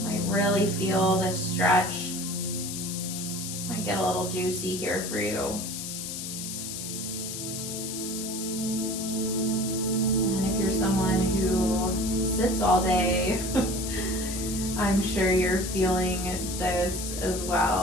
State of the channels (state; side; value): noise; left; hiss, 6 dB below the sound